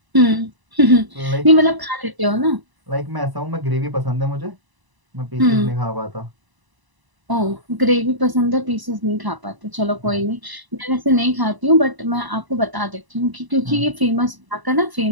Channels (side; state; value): left; late; 1.0 ms